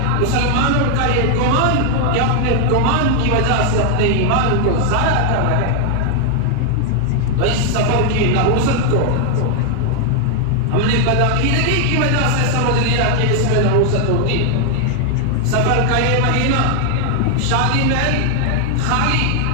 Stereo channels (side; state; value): both; different; correlation 0.00